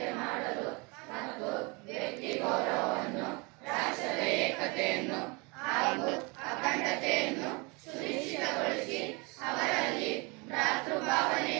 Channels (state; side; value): quieter; left; 28.8 dB